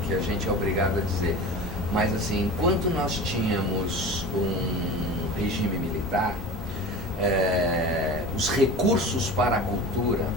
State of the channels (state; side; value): normal; both; correlation 0.34